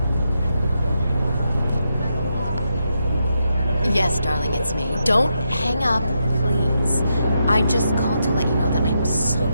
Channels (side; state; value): both; inverted; correlation -0.83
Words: Yes, darling, it's me. Don't hang up, please. I just called to let you know that I'm so